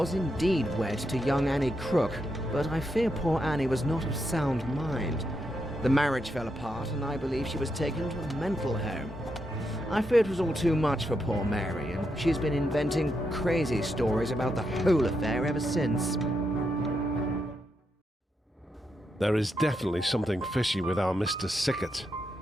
indeed wed to young Annie Crook, but I fear poor Annie was not of sound mind. The marriage fell apart, and I believe she was taken to a mental home. I fear it was all too much for poor Mary, and she's been inventing crazy stories about the whole affair ever since. There is definitely something fishy with our Mr. Sickert.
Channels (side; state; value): both; normal; correlation 0.82